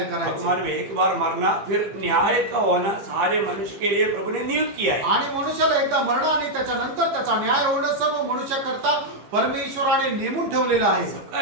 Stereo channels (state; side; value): late; left; 15 ms